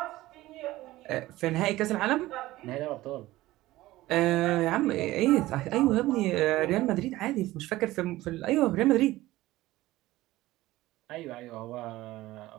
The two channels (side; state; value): left; quieter; 17.2 dB